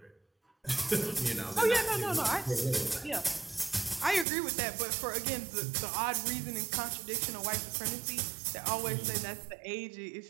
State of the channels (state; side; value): drops out; left; at 4.2 s